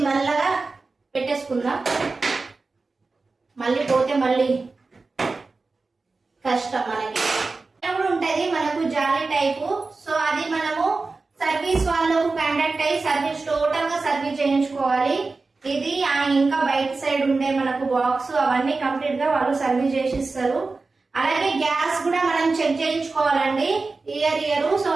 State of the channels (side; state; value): left; quieter; 3.8 dB